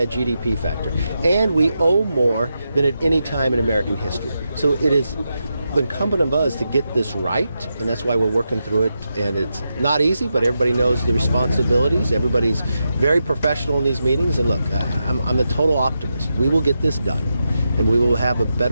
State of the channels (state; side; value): inverted; both; correlation -0.87